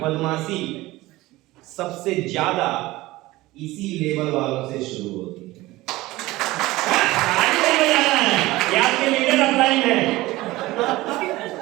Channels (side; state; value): left; quieter; 18.8 dB